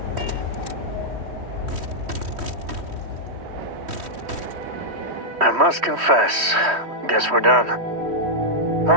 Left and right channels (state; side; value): late; left; 3.1 ms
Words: I must confess, guess we're done. I